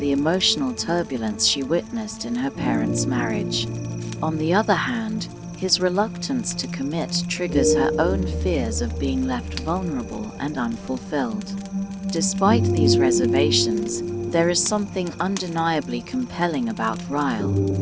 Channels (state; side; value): identical; both; correlation 1.00